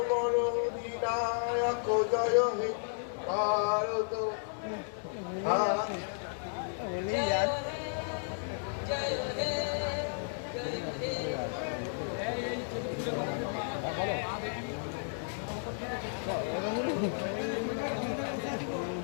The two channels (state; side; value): silent; right; digital silence